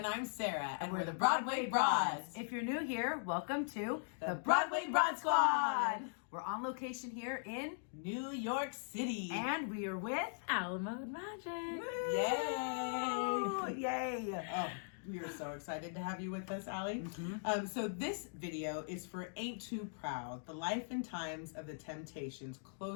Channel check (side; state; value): right; silent; digital silence